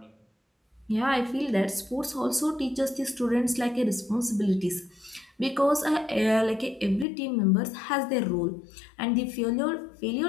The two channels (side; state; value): right; drops out; at 7.1 s